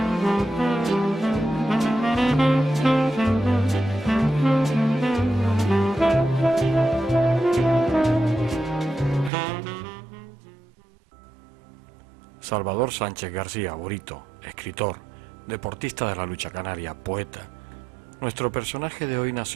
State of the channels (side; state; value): left; drops out; at 9.3 s